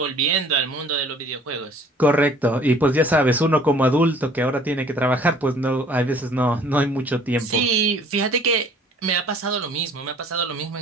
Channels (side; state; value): both; normal; correlation 0.53